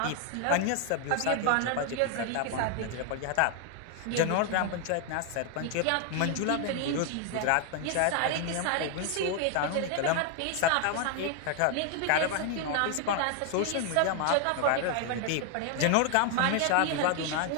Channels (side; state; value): both; different; correlation 0.00